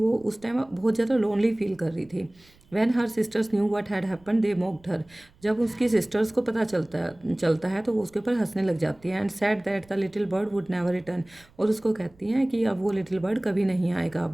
उस टाइम बहुत ज़्यादा लोनली फील कर रही थी। When her sisters knew what had happen they mocked her. जब उसकी सिस्टर्स को पता चलता है तो वो उसके ऊपर हंसने लग जाती है। And said that the little bird would never return. और उसको कहती हैं कि अब वो लिटिल बर्ड कभी नहीं आएगा।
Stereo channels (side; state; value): right; noise; rumble, 30 dB below the sound